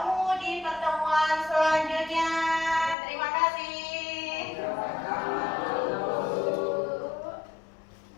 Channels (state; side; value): drops out; right; at 3.0 s